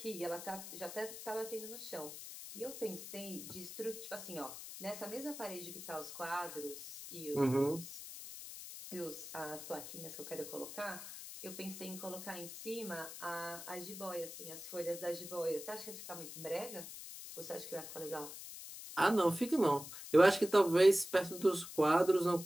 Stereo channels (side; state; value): left; noise; hiss, 11 dB below the sound